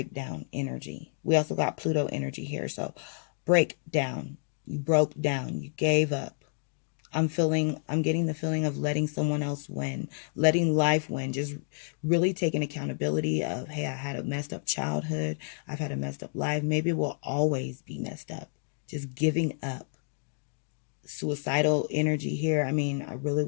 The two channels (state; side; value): silent; right; digital silence